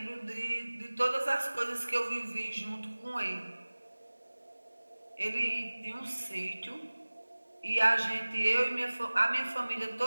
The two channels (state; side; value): inverted; both; correlation -1.00